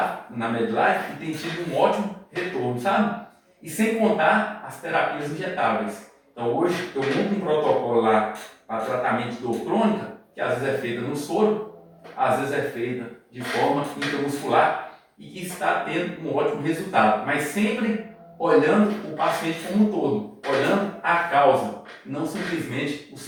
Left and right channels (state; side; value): identical; both; correlation 1.00